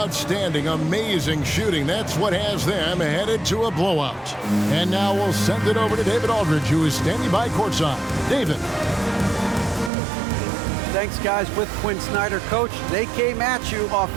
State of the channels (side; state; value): left; drops out; at 9.9 s